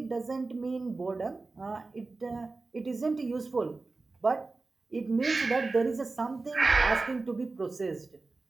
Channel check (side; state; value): left; quieter; 3.6 dB